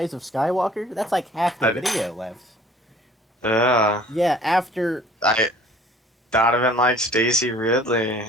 of Skywalker? That's like half the video left. Yeah. Yeah, after Donovan likes Stacy Ridley.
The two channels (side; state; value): both; normal; correlation 0.51